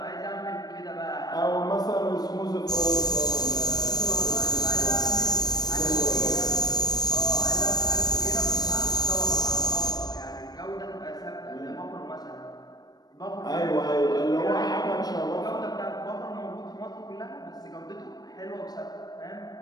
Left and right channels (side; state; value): right; late; 0.19 ms